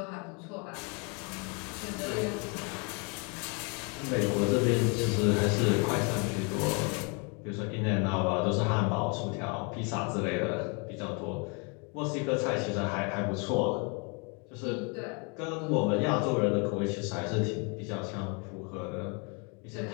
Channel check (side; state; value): right; quieter; 33.9 dB